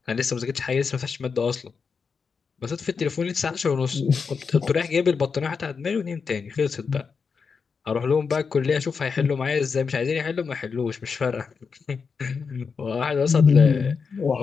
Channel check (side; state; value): right; quieter; 5.5 dB